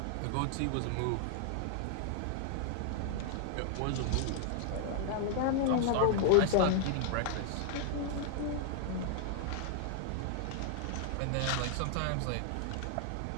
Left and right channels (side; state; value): both; different; correlation 0.00